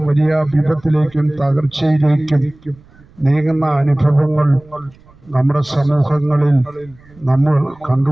വലിയ വിപത്തിലേക്കും തകർച്ചയിലേക്കും നീങ്ങുന്ന അനുഭവങ്ങൾ നമ്മുടെ സമൂഹങ്ങളിൽ നമ്മൾ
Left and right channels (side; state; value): right; noise; rumble, 27 dB below the sound